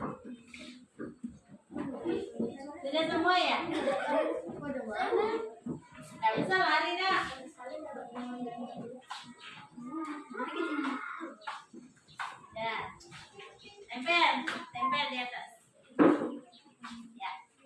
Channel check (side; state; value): both; identical; correlation 1.00